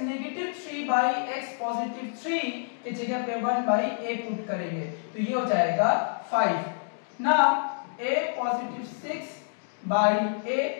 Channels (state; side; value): silent; right; digital silence